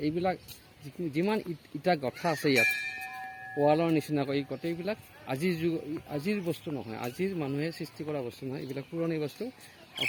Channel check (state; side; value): identical; both; correlation 1.00